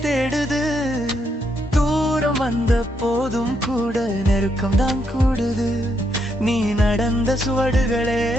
தேடுது. தூரம் வந்த போதும் கூட நெருக்கம் தான் கூடுது, நீ நடந்த சுவடுகளே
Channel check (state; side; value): normal; both; correlation 0.78